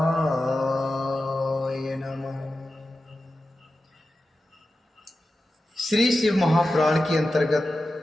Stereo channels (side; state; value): both; normal; correlation 0.92